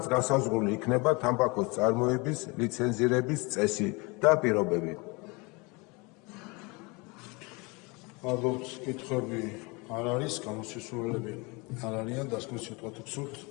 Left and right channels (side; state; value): right; quieter; 27.3 dB